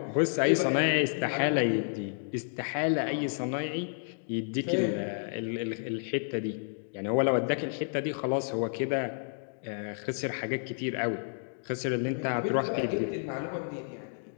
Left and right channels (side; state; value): right; silent; digital silence